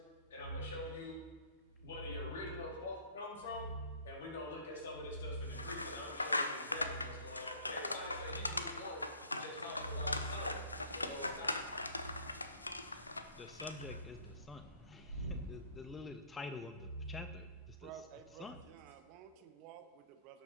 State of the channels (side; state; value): both; inverted; correlation -0.52